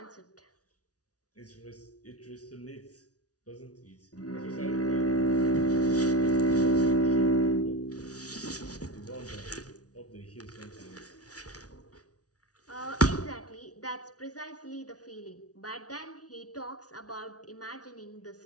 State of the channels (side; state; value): right; late; 0.68 ms